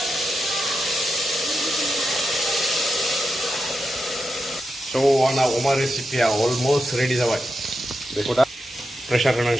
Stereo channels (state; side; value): normal; both; correlation 0.88